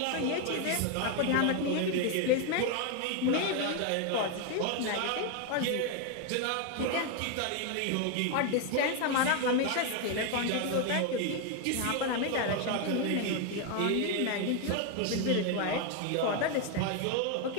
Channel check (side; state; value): both; different; correlation 0.01